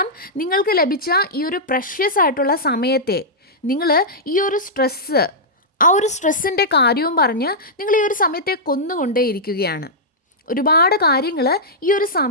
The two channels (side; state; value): both; normal; correlation -0.10